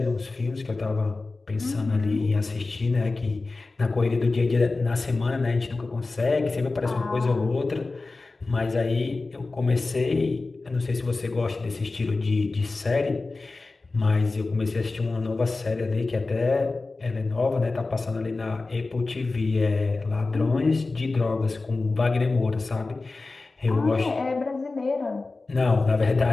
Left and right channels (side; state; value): right; quieter; 3.6 dB